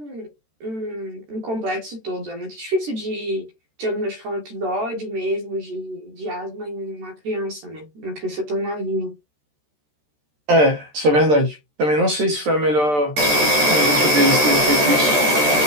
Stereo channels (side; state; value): left; late; 13 ms